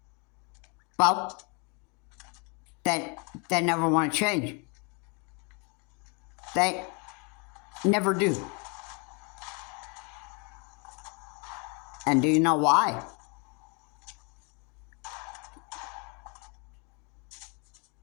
well, they never want to change. They never do. And do you know why?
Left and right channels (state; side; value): quieter; right; 33.2 dB